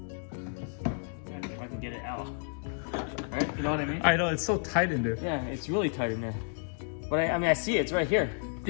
If I can get it out. Right? You know what I mean? I know, it's so tight in there. Yeah, it's really tight in there. But I mean, I see it. It's right here.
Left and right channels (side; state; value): right; silent; 57 dB below the other